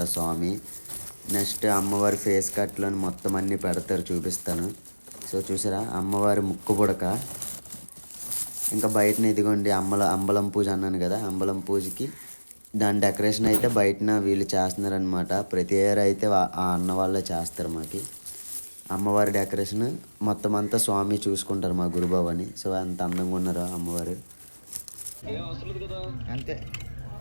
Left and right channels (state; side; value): inverted; both; correlation -1.00